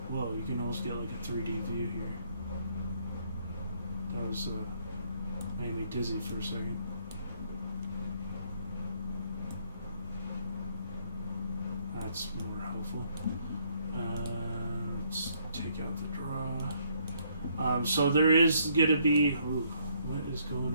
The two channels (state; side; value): inverted; both; correlation -0.68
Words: Whoa, you can almost get like a 3D view here. That was made me dizzy for a second. That's more helpful. Let's take out the draw. So there is going to be... Ooh, what is going